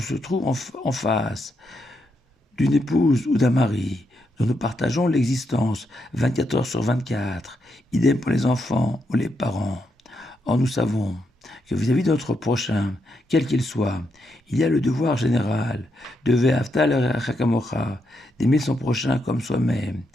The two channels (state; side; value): normal; both; correlation 0.81